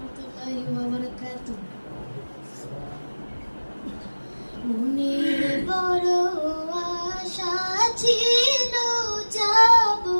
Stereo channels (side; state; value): both; inverted; correlation -1.00